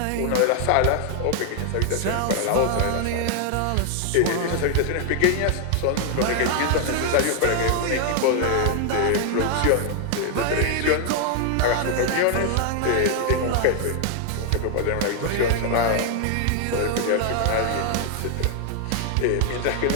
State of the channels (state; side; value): different; both; correlation 0.00